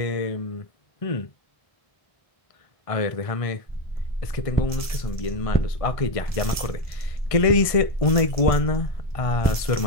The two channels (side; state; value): right; late; 1.5 ms